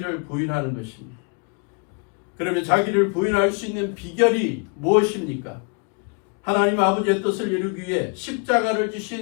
부인하는 것입니다. 그러면 자기를 부인할 수 있는 비결이 무엇입니까? 하나님 아버지의 뜻을 이루기 위해 십자가를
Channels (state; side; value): quieter; right; 35.2 dB